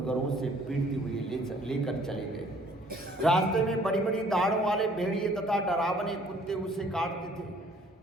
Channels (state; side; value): normal; both; correlation 0.58